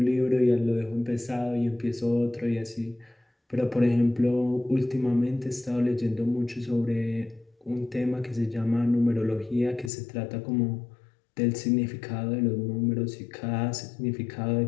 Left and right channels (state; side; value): drops out; right; at 9.9 s